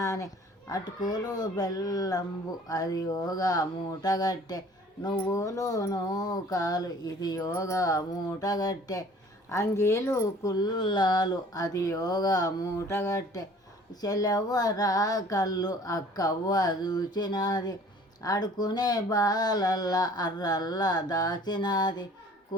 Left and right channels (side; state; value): both; normal; correlation 0.51